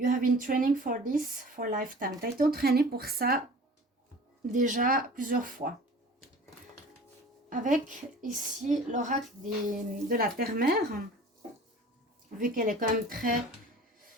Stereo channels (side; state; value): both; normal; correlation 0.43